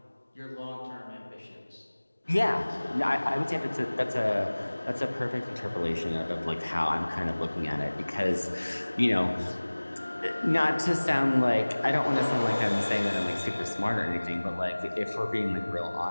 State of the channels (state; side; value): inverted; both; correlation -1.00